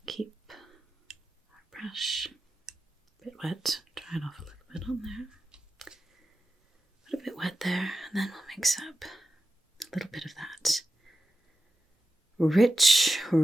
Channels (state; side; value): normal; both; correlation 0.90